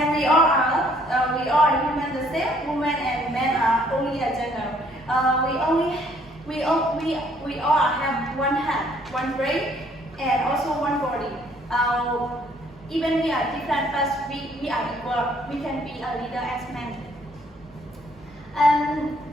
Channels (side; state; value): both; normal; correlation 0.63